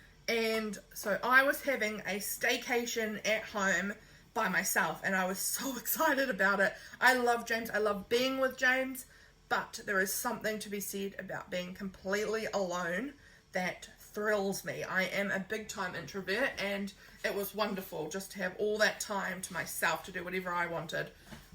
And so I was having a staycation at home by myself, and I was so excited about it. I love James. I love being with James, but there is something to be said about being completely alone that thrills me. I am a big time introvert, and it was wonderful just to have all that time to myself to do whatever I wanted.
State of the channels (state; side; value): identical; both; correlation 1.00